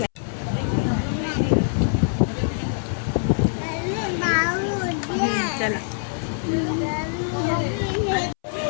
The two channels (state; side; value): silent; right; 63 dB below the other